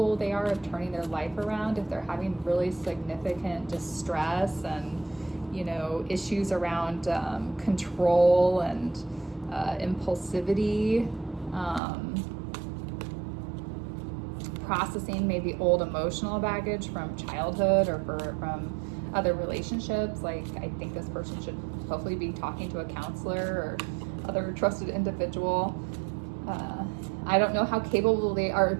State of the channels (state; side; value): drops out; left; at 11.8 s